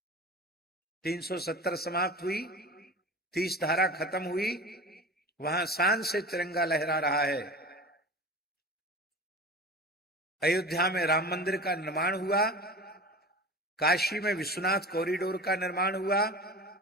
370 समाप्त हुई, 30 धारा खत्म हुई, वहां शान से तिरंगा लहरा रहा है। अयोध्या में राम मंदिर का निर्माण हुआ, काशी में विश्वनाथ कॉरिडोर का निर्माण हुआ,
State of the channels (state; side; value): normal; both; correlation 0.34